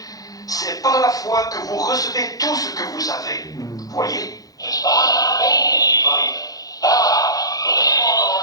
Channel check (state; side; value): late; right; 0.18 ms